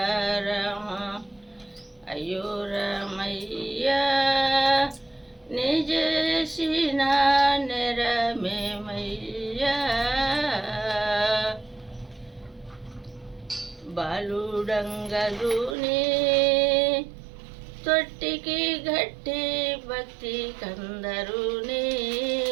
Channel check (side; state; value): left; drops out; at 15.8 s